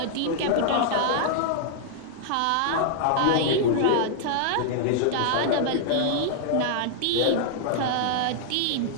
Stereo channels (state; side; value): different; both; correlation -0.01